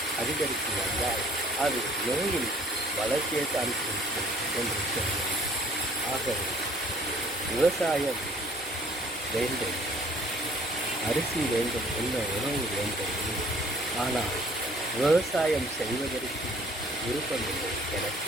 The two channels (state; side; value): normal; both; correlation 0.57